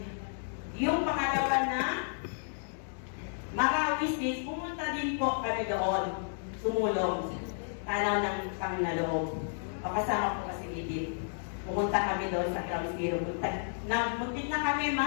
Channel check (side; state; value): right; silent; 56 dB below the other